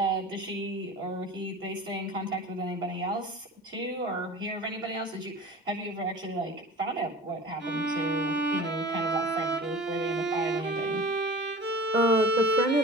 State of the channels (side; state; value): both; normal; correlation 0.39